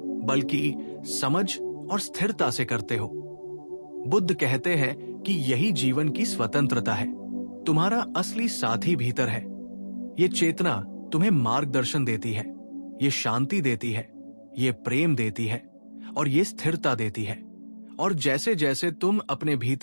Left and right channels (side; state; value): both; inverted; correlation -1.00